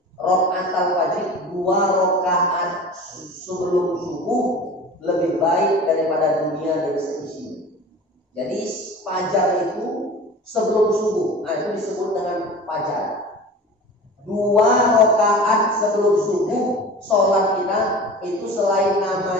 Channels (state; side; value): normal; both; correlation 0.37